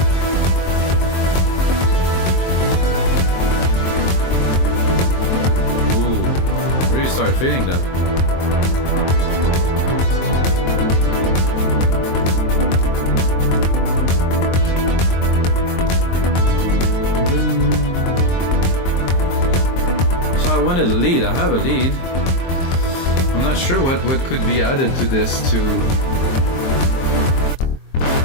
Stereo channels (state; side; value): late; right; 23 ms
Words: Ooh, really start feeling that. I wanted a lead. I have a lead. I'm not sure what could be added to this to.